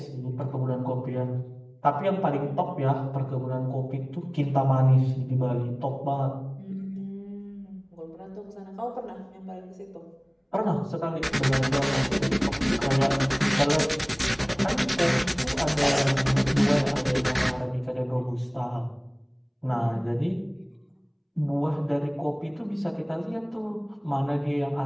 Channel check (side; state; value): both; identical; correlation 1.00